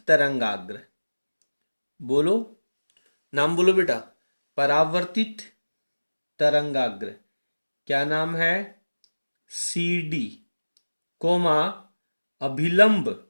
तरंगाग्र, बोलो, नाम बोलो बेटा, परावर्तित तरंगाग्र, क्या नाम है, सी डी कोमा अभिलंब,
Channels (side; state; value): both; inverted; correlation -1.00